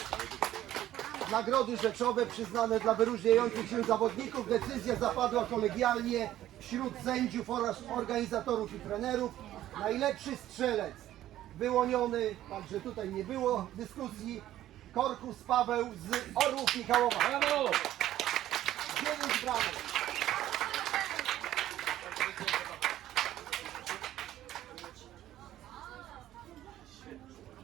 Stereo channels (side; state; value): left; quieter; 13.2 dB